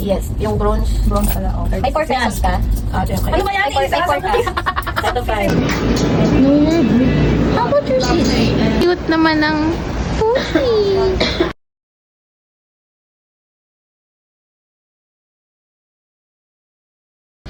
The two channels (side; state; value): both; identical; correlation 1.00